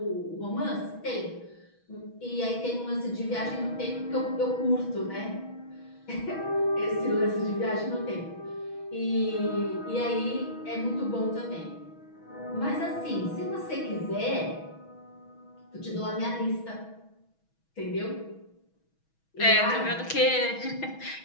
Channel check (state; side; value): late; right; 6.2 ms